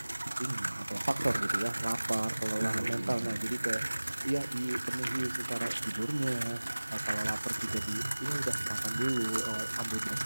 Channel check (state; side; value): inverted; both; correlation -1.00